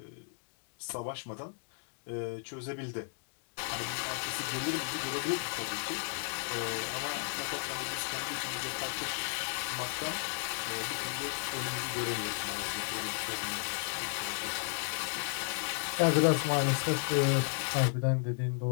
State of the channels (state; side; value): silent; right; digital silence